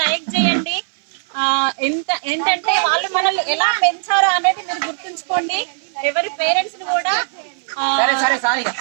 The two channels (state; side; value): silent; left; 60 dB below the other